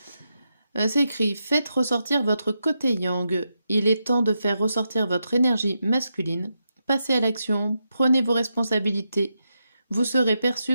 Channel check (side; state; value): both; inverted; correlation -0.86